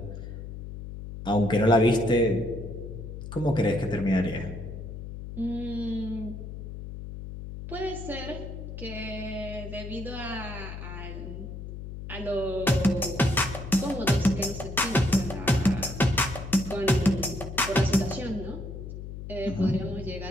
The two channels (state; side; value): noise; left; hum, 9 dB below the sound